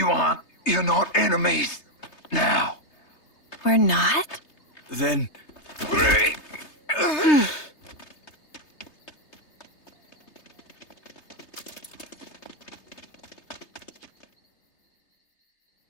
not enemies now. We're not? Then...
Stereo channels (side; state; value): right; late; 3.3 ms